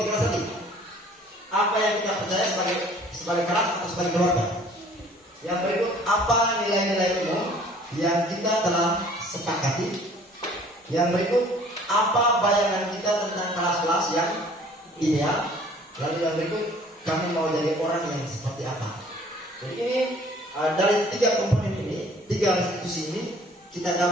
kelas tadi. Apa yang kita percaya sebagai kelas atau sebagai keluarga. Yang berikut, apa nilai-nilai umum yang kita telah sepakati. Yang berikut, apa bayangan kita tentang kelas-kelas yang ideal. Lalu yang berikut, kami mau jadi orang yang seperti apa. Jadi ini dari 3 komponen ini, 3 institusi ini kita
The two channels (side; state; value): both; normal; correlation 0.53